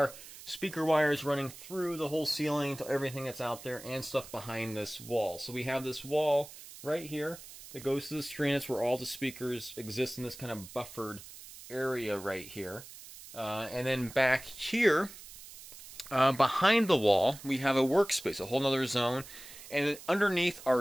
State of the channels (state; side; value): noise; right; hiss, 16 dB below the sound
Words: speaker wires running through the whole ceiling to everything that's out there and stuff behind this wall. So we have this wall right here that goes to the screen. It's where all the speakers exist in this kind of buffered area right here. And then back here, behind the wall, we have a workspace, a whole nother zone. And underneath